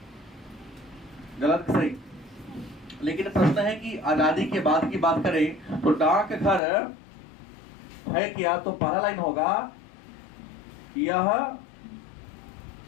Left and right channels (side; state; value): right; drops out; at 6.6 s